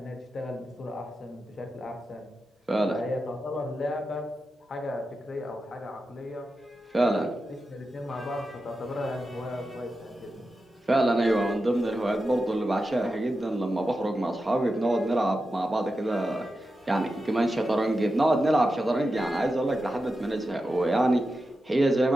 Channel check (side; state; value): both; normal; correlation 0.90